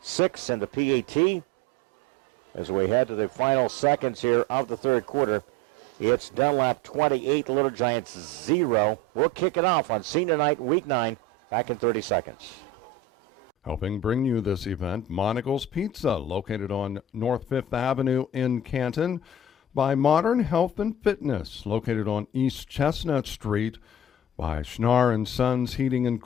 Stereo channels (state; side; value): normal; both; correlation 0.35